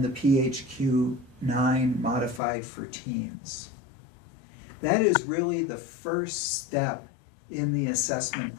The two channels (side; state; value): right; drops out; at 2.4 s